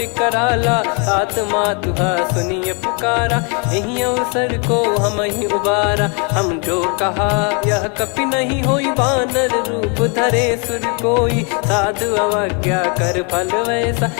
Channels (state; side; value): quieter; right; 35.8 dB